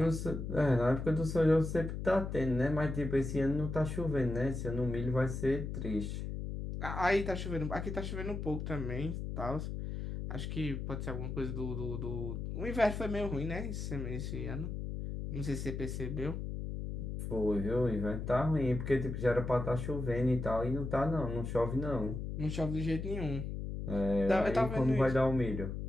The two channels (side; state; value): left; noise; hum, 5 dB below the sound